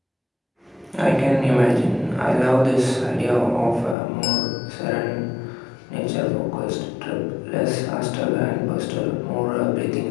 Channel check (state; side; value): drops out; right; at 4.0 s